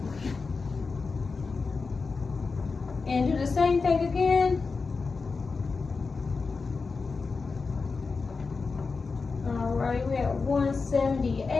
And do the same thing again. All right, we're at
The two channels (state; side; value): quieter; right; 4.5 dB